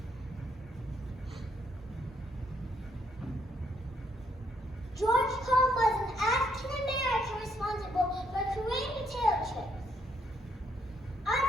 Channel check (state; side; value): normal; both; correlation 0.73